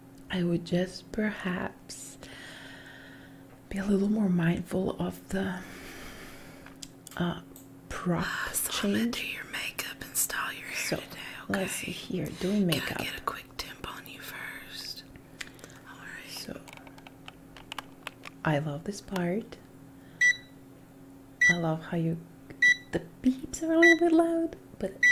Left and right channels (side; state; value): both; identical; correlation 1.00